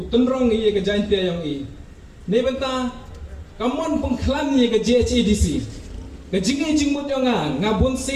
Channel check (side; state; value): both; identical; correlation 1.00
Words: ia ke jain tiang yang ini, ni benta, kamu pengklan ia ke JHADC, ke jengai jengmut yang ngabun